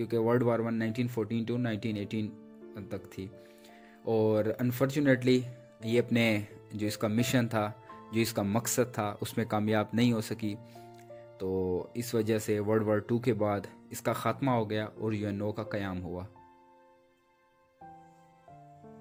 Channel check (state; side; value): identical; both; correlation 1.00